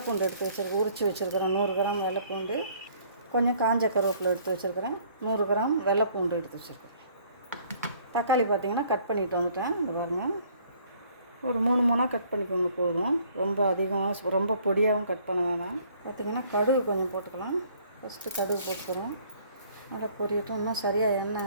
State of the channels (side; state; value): both; inverted; correlation -0.59